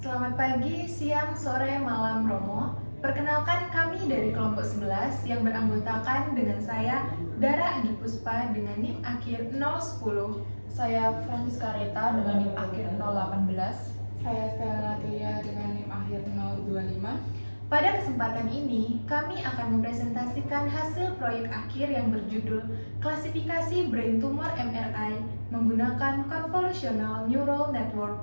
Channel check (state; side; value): inverted; both; correlation -1.00